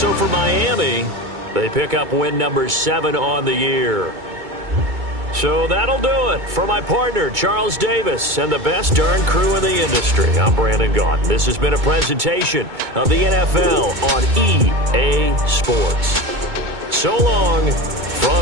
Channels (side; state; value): left; late; 2.2 ms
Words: for Miami, they pick up win number 7 on the year. So that'll do it for my partner, Charles Davis, and the best darn crew in the industry. I'm Brandon Gaudin. This has been a presentation of the NFL on EA Sports. So long